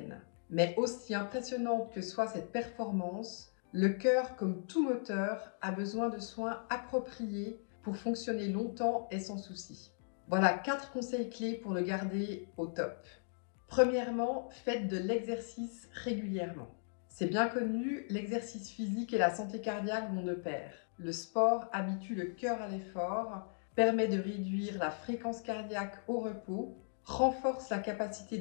Mais aussi impressionnante que soit cette performance, le cœur, comme tout moteur, a besoin de soins appropriés pour fonctionner longtemps et sans souci. Voilà 4 conseils clés pour le garder au top. Premièrement, faites de l'exercice régulièrement. C'est bien connu, l'exercice physique et la santé cardiaque vont de pair. Le sport habitue le cœur à l'effort, permet de réduire la fréquence cardiaque au repos, renforce la capacité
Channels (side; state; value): right; silent; digital silence